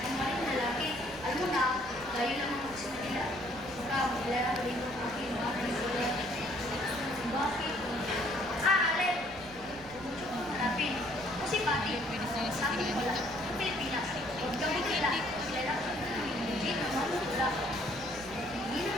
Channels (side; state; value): right; noise; rumble, 19 dB below the sound